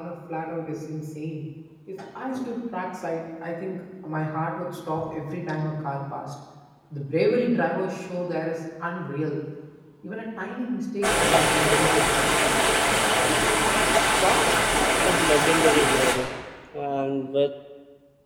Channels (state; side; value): identical; both; correlation 1.00